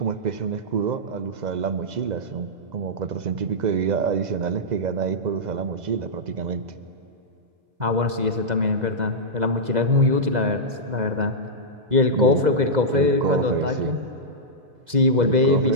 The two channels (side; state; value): left; late; 2.0 ms